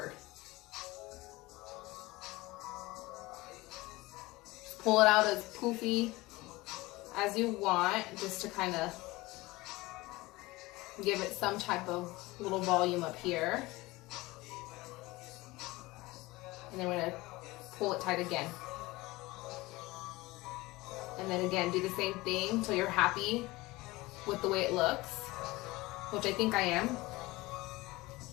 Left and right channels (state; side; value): quieter; right; 20.8 dB